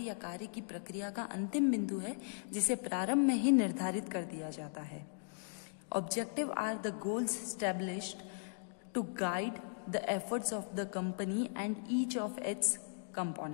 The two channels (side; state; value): right; silent; digital silence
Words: कार्य की प्रक्रिया का अंतिम बिंदु है जिसे प्रारंभ में ही निर्धारित कर दिया जाता है। Objective are the goals established to guide the efforts of the company and each of its